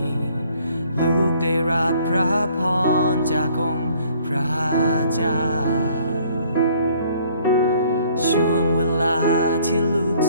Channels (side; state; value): both; inverted; correlation -0.59